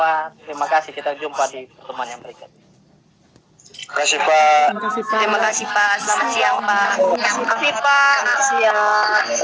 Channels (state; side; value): identical; both; correlation 1.00